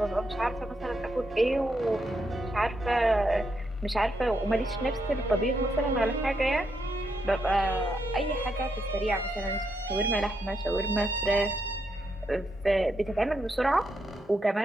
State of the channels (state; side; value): normal; both; correlation 0.80